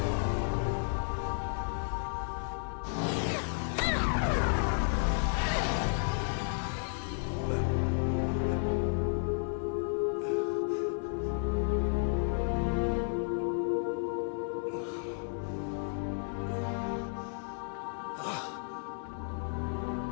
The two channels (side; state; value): right; silent; digital silence